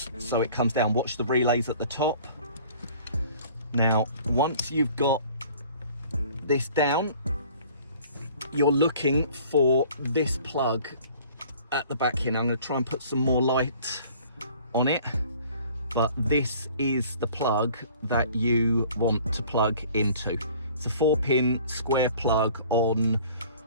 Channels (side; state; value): both; inverted; correlation -0.51